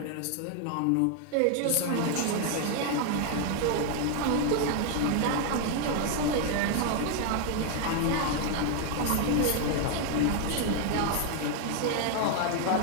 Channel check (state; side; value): different; both; correlation 0.00